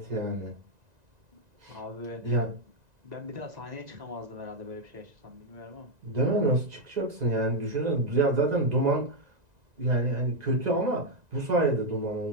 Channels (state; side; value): late; left; 1.9 ms